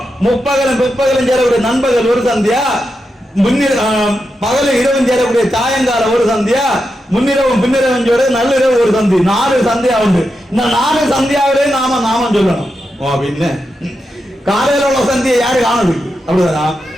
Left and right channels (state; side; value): normal; both; correlation 0.87